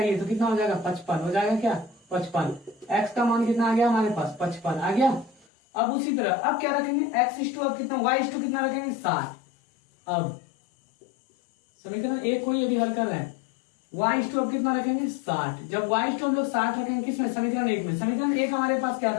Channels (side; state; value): right; drops out; at 5.5 s